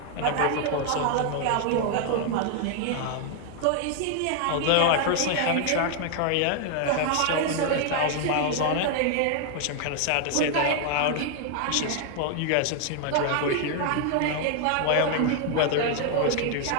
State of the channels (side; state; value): both; different; correlation 0.00